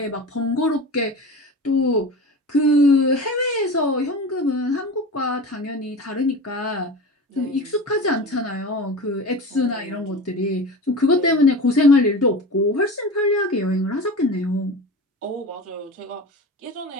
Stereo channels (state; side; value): normal; both; correlation 0.31